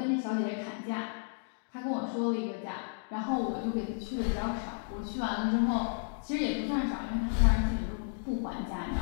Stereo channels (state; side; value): silent; right; digital silence